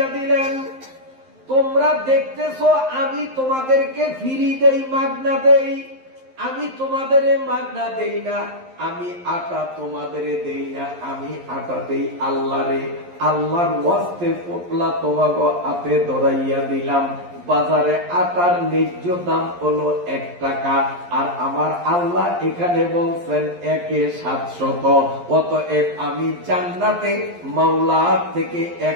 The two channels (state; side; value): late; left; 11 ms